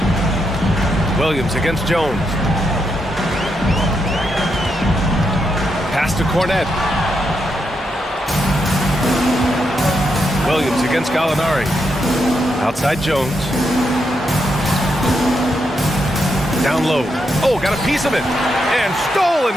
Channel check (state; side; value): normal; both; correlation 0.82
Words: Williams against Jones. Pass to Cornette. Williams against Gallinari. Outside Jones. Down low. Oh, got a piece of it. And stolen